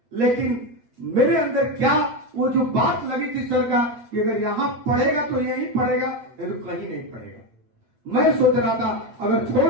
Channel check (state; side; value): late; left; 8.4 ms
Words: लेकिन मेरे अंदर क्या वो जो बात लगी थी सर का कि अगर यहां पढ़ेगा तो यहीं पढ़ेगा, नहीं तो कहीं नहीं पढ़ेगा। मैं सोच रहा था अगर